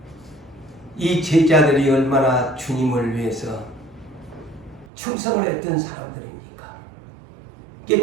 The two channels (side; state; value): left; drops out; at 4.9 s